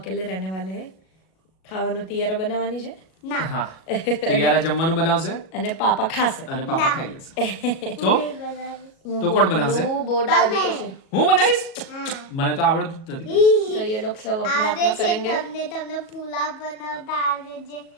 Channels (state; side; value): late; right; 37 ms